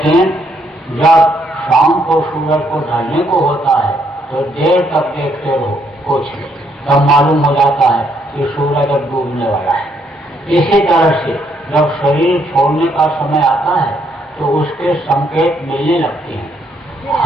जब शाम को सूरज को ढलने को होता है तो देर तक देखते रहो कुछ नहीं, तब मालूम हो जाता है कि सूरज अब डूबने वाला है। इसी तरह से जब शरीर छोड़ने का समय आता है तो उसके संकेत मिलने लगते हैं।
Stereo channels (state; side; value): normal; both; correlation 0.72